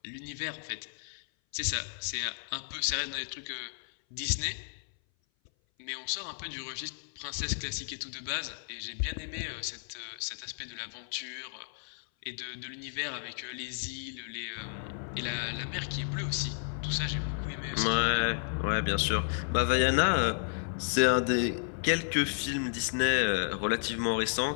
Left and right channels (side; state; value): right; silent; 56 dB below the other